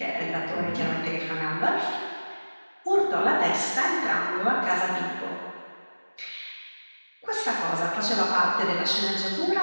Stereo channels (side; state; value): both; inverted; correlation -1.00